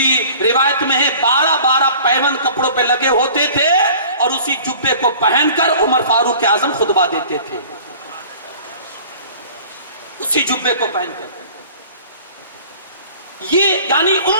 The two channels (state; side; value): inverted; both; correlation -0.46